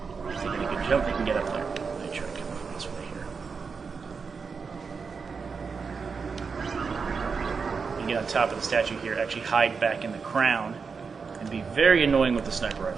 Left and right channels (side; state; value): left; quieter; 5.3 dB